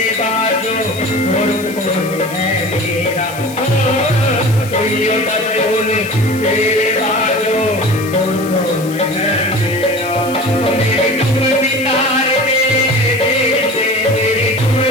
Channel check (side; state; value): left; noise; hiss, 15 dB below the sound